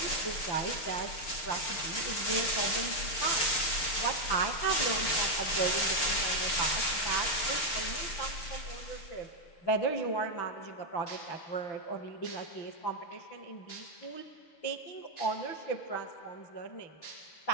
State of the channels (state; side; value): late; right; 6.6 ms